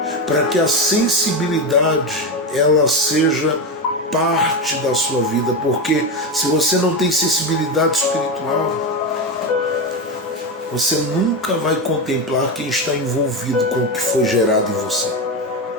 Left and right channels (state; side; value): normal; both; correlation 0.15